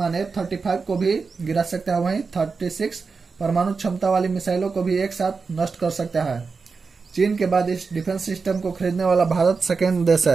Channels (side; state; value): left; quieter; 4.8 dB